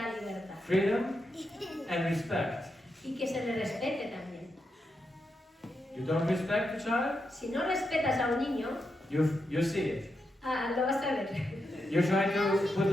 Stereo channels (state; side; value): normal; both; correlation 0.85